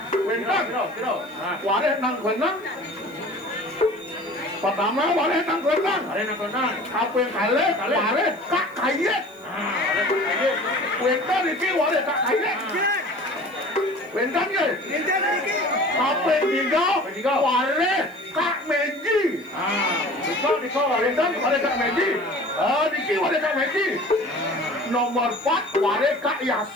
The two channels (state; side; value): noise; left; hiss, 29 dB below the sound